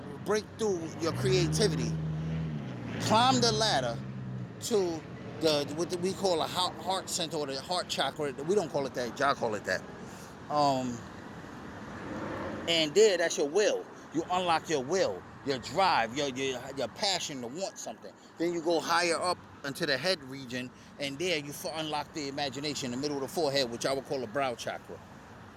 break through your creativity, climb the ladder to what we call a heart center or the heart chakra. We don't call it that. Y'all call it that. And there, that's your will. You unlock your will, your drive, your passion to want something. Then you go higher up into the head region, and there you unlock the imagination, the middle of the forehead, which I would call a brow chakra.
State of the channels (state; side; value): identical; both; correlation 1.00